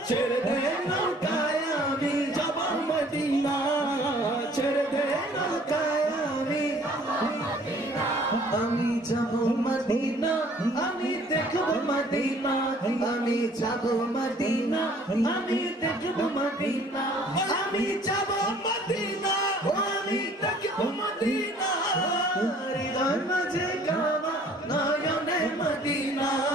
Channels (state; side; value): normal; both; correlation 0.55